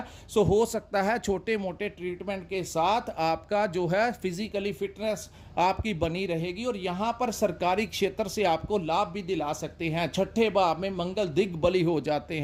सो हो सकता है छोटे मोटे ट्रीटमेंट के साथ आपका जो है फिजिकली फिटनेस आपकी बनी रहेगी और यहाँ पर सरकारी क्षेत्र से आपको लाभ भी दिला सकते हैं। छठे भाव में मंगल दिग्बली हो जाते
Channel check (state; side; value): identical; both; correlation 1.00